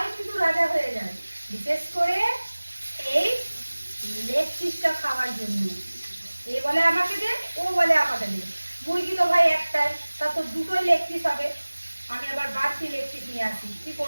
কিন্তু রাজা হয়ে যায়, বিশেষ করে এই লেগ পিসটা খাওয়ার জন্য। এ বলে আমাকে দে, ও বলে আমাকে দে। মুরগি তো ভাই একটাই, তা তো দুটোই লেগ পিস হবে। আমি আবার বাড়তি লেগ পিস নিয়ে আসি, কি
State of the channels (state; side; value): inverted; both; correlation -1.00